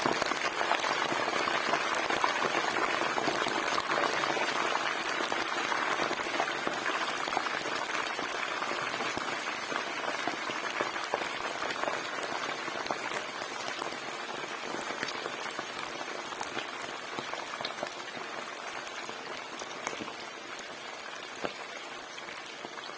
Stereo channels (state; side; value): identical; both; correlation 1.00